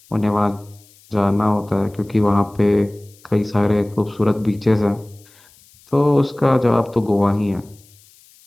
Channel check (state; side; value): noise; left; hiss, 28 dB below the sound